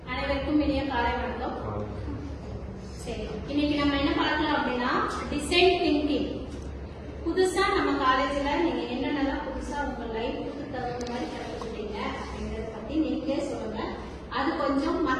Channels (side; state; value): both; identical; correlation 1.00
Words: அனைவருக்கும் இனிய காலை வணக்கம். சரி, இன்னைக்கு நம்ம என்ன பார்க்கலாம் அப்படின்னா டிசைன் திங்கிங். புதுசா நம்ம காலேஜ்ல நீங்க என்னென்னலாம் புதுசா உங்க லைஃப்க்கு தகுந்த மாதிரி கற்றுக்கிட்டீங்க அப்படிங்கறத பத்தி நீங்களே சொல்லுங்க. அது கொஞ்சம்